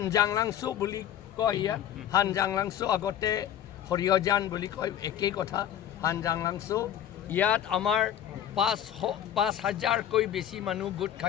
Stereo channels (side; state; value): right; quieter; 10.4 dB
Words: বুলি কয় ইয়াত হানজাংলাংছু আগতে হৰিয়জান বুলি কয় একেই কথা হানজাংলাংছু ইয়াত আমাৰ 5,000কৈ বেছি মানুহ গোট